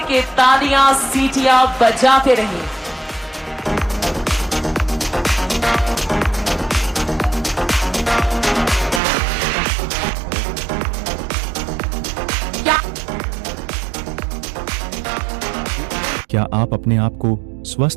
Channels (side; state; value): left; drops out; at 9.0 s